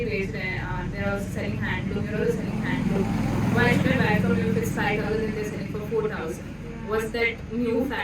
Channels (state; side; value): identical; both; correlation 1.00